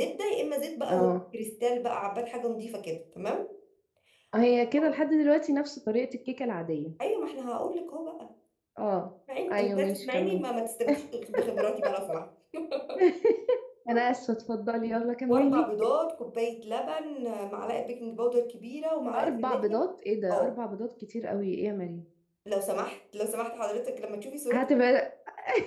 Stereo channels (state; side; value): identical; both; correlation 1.00